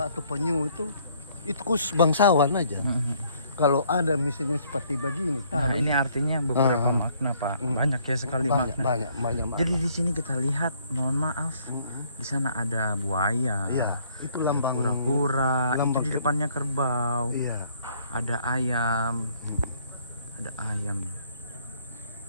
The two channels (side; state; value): both; inverted; correlation -0.64